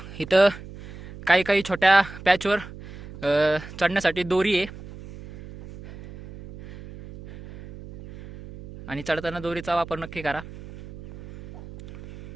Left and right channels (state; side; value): noise; right; hum, 15 dB below the sound